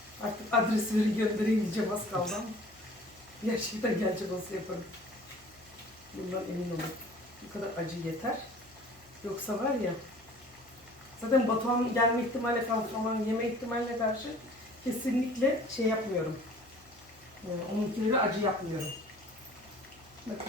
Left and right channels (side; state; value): left; noise; hum, 28 dB below the sound